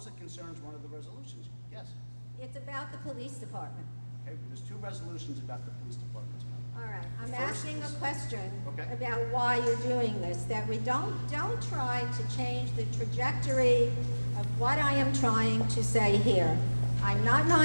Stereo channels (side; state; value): both; inverted; correlation -1.00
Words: it concerns one of the resolutions, yes. It's about the police department. Okay, there's two resolutions about the police department tonight. All right, I'm First asking a is- question Okay. about why you're doing this, that we don't try to change the trajectory of what I am trying to say here. I'm not